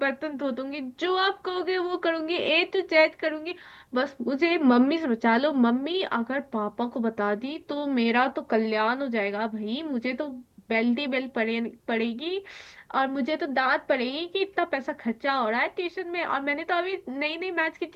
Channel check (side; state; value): both; identical; correlation 1.00